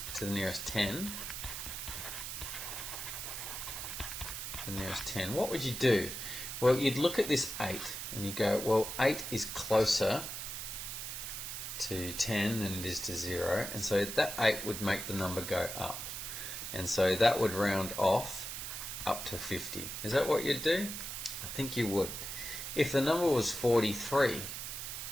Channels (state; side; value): noise; right; hiss, 6 dB below the sound